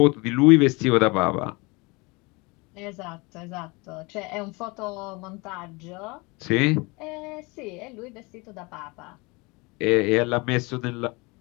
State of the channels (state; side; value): quieter; right; 26.2 dB